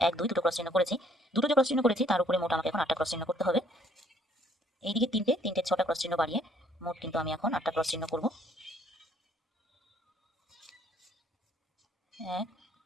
1 2 দুটো ক্রস চিহ্ন করেছি। দুটো যে ক্রস চিহ্ন করেছি তার উপরে মোট আমাকে এখন 8টা ক্রস চিহ্ন করতে হবে। এইদিকে 3টে 6টা ক্রস চিহ্ন বাড়িয়ে মোট কিন্তু আমি এখন 8টা ক্রস চিহ্ন করব। 1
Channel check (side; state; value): both; normal; correlation 0.62